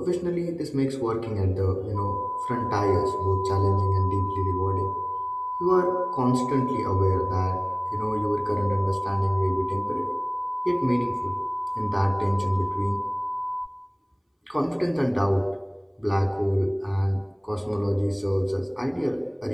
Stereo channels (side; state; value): both; identical; correlation 1.00